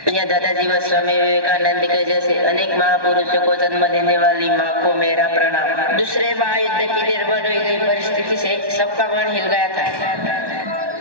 या दादाजी व स्वामी विवेकानंद के जैसे अनेक महापुरुषों को जन्म देने वाली माँ को मेरा प्रणाम. दूसरे महायुद्ध की निर्भर हुई गई परिस्थिति से सबका मन हिल गया था.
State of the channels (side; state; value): left; late; 1.2 ms